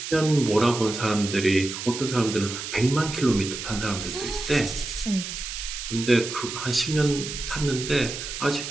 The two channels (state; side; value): noise; right; hiss, 7 dB below the sound